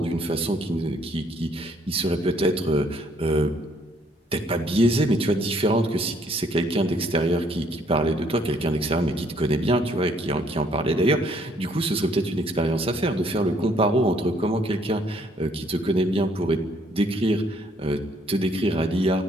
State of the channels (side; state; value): both; normal; correlation 0.65